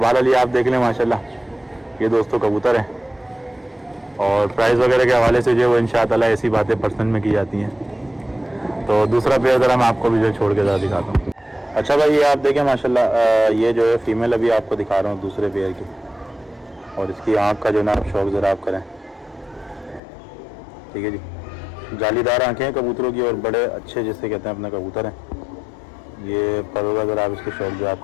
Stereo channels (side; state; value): right; drops out; at 20.0 s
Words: ये आप देख लें माशाल्लाह, ये दोस्तों कबूतर है। और प्राइस वगैरह के हवाले से जो वो इंशाअल्लाह ऐसी बातें पर्सनल में की जाती हैं। तो दूसरा पेयर ज़रा मैं आपको भी जो छोड़ के ज़रा दिखाता हूँ। अच्छा भाई, ये आप देखें माशाल्लाह, ये जो है फ़ीमेल अभी आपको दिखा रहा हूँ दूसरे पेयर की, और इसकी आँख का जो ना आप शौक ज़रा आप करें, ठीक है जी। जालीदार आँखें हैं कबूतरों की, और बड़े अच्छे जिससे कहते हैं अपने कबूतर हैं। ये पलों का ज़रा आप इसके शौक जो आप